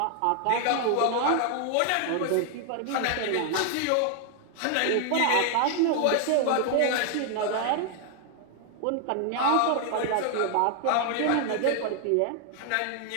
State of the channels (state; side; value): different; both; correlation 0.00